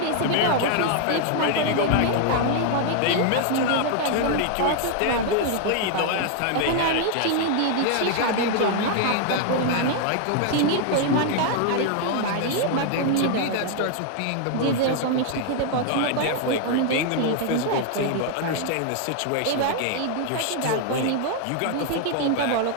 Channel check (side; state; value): both; different; correlation 0.00